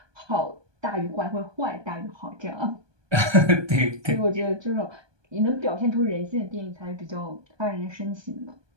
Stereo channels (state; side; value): late; left; 1.2 ms